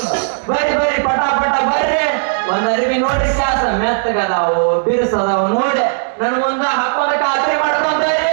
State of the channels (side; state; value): left; silent; digital silence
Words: ಬರ್ರಿ ಬರ್ರಿ ಪಟ ಪಟ ಬರ್ರಿ. ಒಂದ್ ಅರಿವಿ ನೋಡ್ರಿ ಕ್ಯಾಸ ಮೆತ್ತಗದಾವು ಬಿರ್ಸದಾವು ನೋಡಿ ನನ್ಗೊಂದು ಹಾಕೊಂಡ ಖಾತ್ರಿ ಮಾಡ್ಕೊಂಡ್ರಿ.